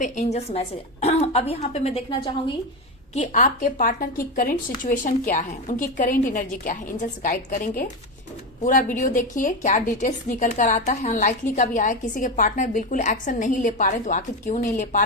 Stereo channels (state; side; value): normal; both; correlation 0.15